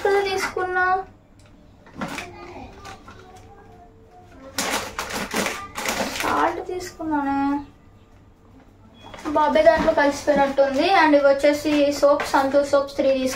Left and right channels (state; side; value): identical; both; correlation 1.00